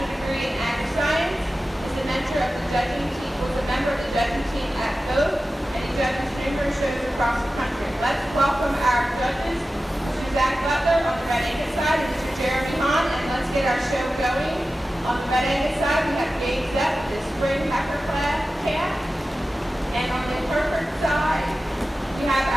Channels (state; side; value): normal; both; correlation 0.94